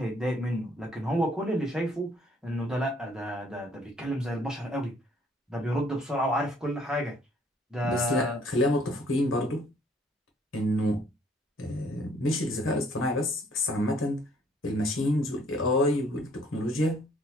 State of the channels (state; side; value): normal; both; correlation 0.62